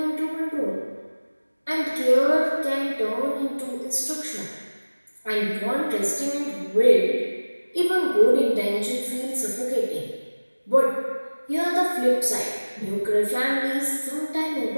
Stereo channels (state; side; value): inverted; both; correlation -1.00